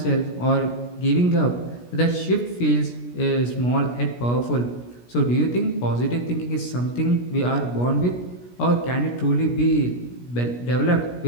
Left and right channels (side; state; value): right; late; 17 ms